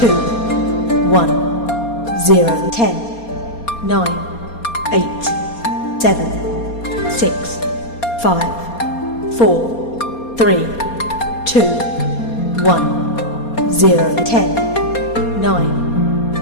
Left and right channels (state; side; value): late; right; 4.3 ms